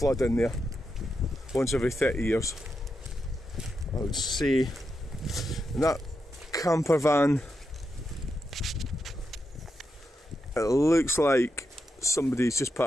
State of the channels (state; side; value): normal; both; correlation 0.86